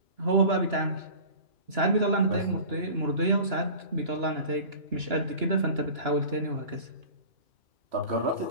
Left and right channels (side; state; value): left; late; 2.9 ms